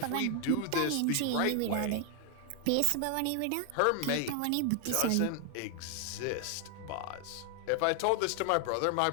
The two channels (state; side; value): different; both; correlation 0.00